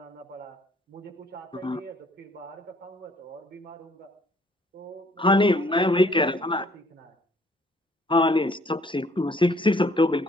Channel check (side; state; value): both; normal; correlation 0.61